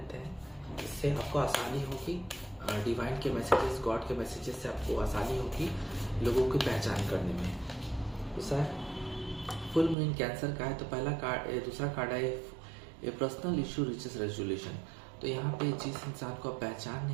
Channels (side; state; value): left; drops out; at 10.0 s